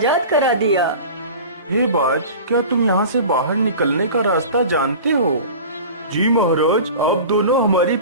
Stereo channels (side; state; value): both; inverted; correlation -0.37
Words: करा दिया। हे बाज, क्या तुम यहाँ से बाहर निकलने का रास्ता जानते हो? जी महाराज, आप दोनों हमारी